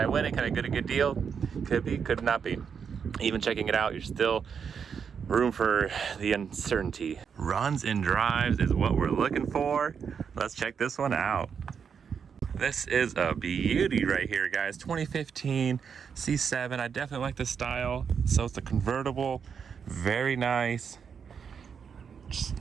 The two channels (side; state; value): left; quieter; 6.8 dB